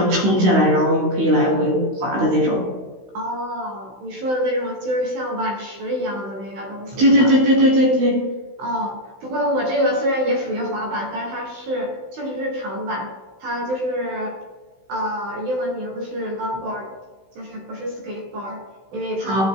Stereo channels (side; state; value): left; late; 16 ms